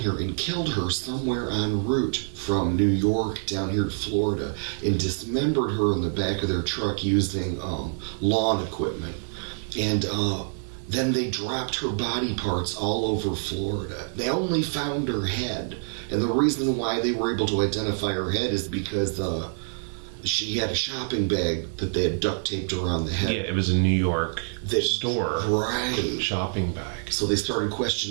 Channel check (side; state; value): left; silent; digital silence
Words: and killed her somewhere en route from New York down here to Florida and dismembered her in the back of their truck using lawn equipment. And then they dropped her body parts all over Florida. They only found her head. And the reason why they were able to identify her head is because she had a shopping bag that they had duct taped around the head. Yeah, it was a New York store. Right. Shopping bag. So they started